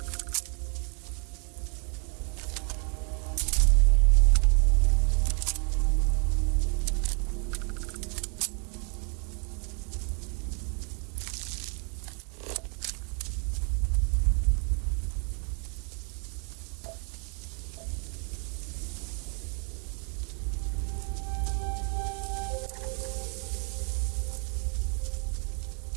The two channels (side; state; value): left; quieter; 36.1 dB